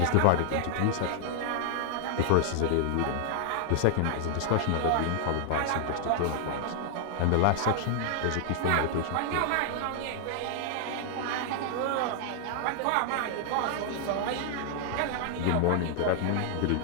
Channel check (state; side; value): different; both; correlation 0.00